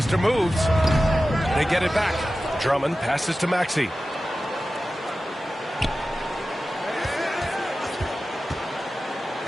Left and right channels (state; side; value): normal; both; correlation 0.94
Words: Moves. They get it back. Drummond passes to Maxey.